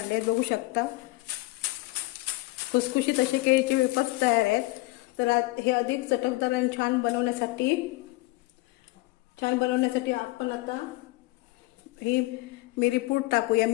बघू शकता खुसखुशीत असे केळीचे वेफर्स तयार आहेत. तर हे अधिक चटकदार आणि छान बनवण्यासाठी आपण आता ही मिरीपूड टाकूया.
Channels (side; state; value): right; quieter; 20.9 dB